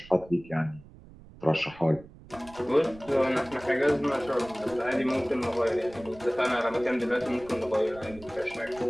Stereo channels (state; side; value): noise; right; rumble, 20 dB below the sound